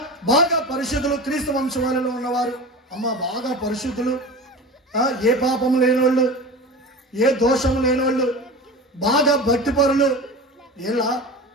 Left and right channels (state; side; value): normal; both; correlation 0.32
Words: బాగా పరిశుద్ధులు క్రీస్తు వంశవాళిలో ఉన్నవారు. అమ్మ బాగా పరిశుద్ధులు, ఏ పాపం లేనివాళ్ళు, ఏ దోషం లేనివాళ్ళు, బాగా భక్తిపరులు. ఇలా